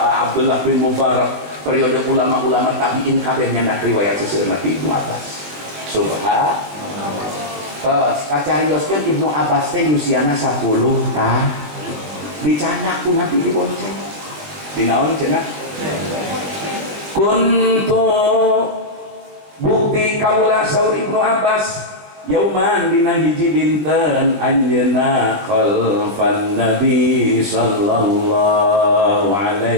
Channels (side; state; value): left; late; 20 ms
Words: bin Mubarak periode ulama-ulama tabi'in kabeh nyandak riwayat seseueurna ti Ibnu Abbas subhanallah. Terus kacarioskeun Ibnu Abbas teh usiana 10 tah. Dicana ku Nabi dibonceng. Dinaon cenah? Kuntu bukti kaula saur Ibnu Abbas yauman dina hiji dinten anjeunna khalfan Nabi sallallahu